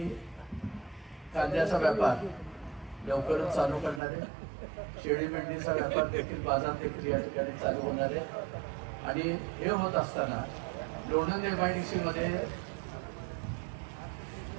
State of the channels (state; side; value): drops out; left; at 4.0 s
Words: कांद्याचा व्यापार लवकरच चालू करणार आहे. शेळी मेंढीचा व्यापार देखील, बाजार देखील या ठिकाणी चालू होणार आहे. आणि हे होत असताना लोणंद MIDC मध्ये